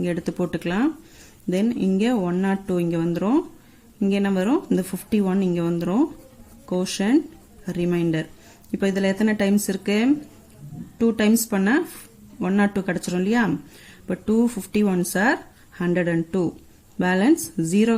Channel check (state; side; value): identical; both; correlation 1.00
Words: எடுத்து போட்டுக்கலாம். தென் இங்க 102 இங்க வந்துரும். இங்க என்ன வரும்? இந்த 51 இங்க வந்துரும். Quotient, remainder. இப்போ இதுல எத்தனை டைம்ஸ் இருக்கு? 2 டைம்ஸ் பண்ணா 102 கிடைச்சிரும் இல்லையா? இப்போ 251s are 102. பேலன்ஸ் 0